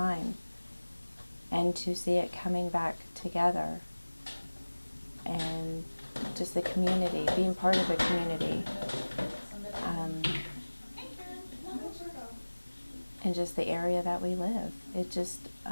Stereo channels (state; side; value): inverted; both; correlation -1.00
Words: and to see it coming back together, and just the community, being part of a community, and just the area that we live.